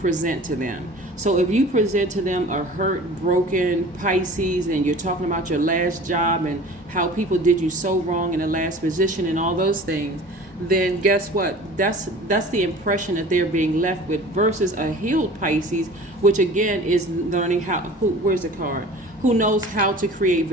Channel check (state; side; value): normal; both; correlation 0.42